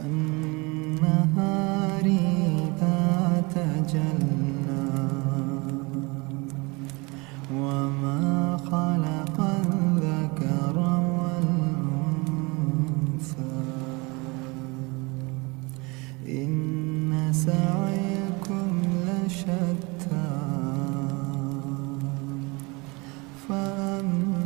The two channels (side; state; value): left; quieter; 26.8 dB